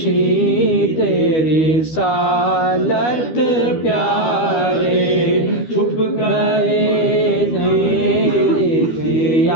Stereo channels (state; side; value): late; right; 12 ms